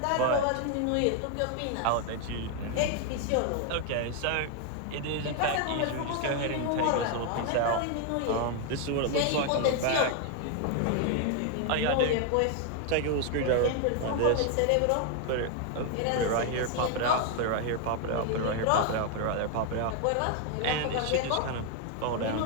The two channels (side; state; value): both; different; correlation 0.01